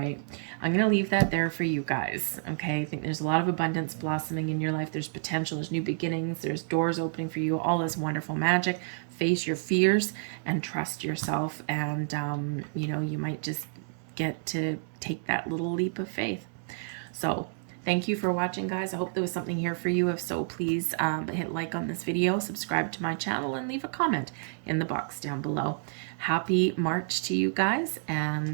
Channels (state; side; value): silent; left; digital silence